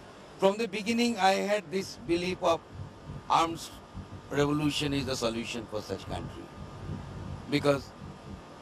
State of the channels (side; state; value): both; identical; correlation 1.00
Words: from the beginning, I had this belief of arms revolution is the solution for such country. Because